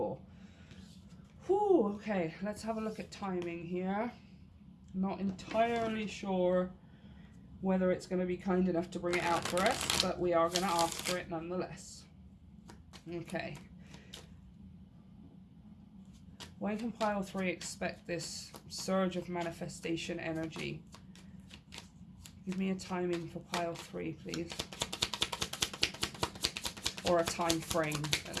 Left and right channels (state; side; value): identical; both; correlation 1.00